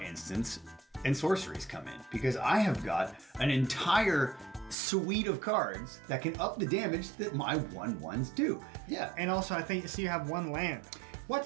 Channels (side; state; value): left; drops out; at 4.8 s